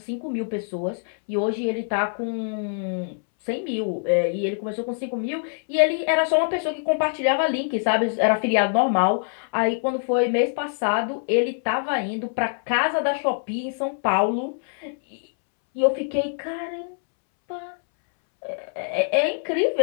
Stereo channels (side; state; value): right; silent; 62 dB below the other